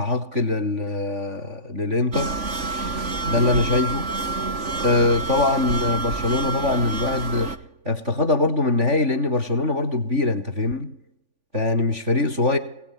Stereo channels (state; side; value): late; left; 3.5 ms